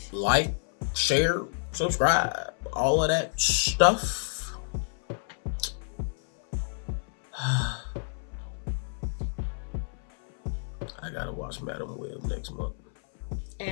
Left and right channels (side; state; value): right; silent; 59 dB below the other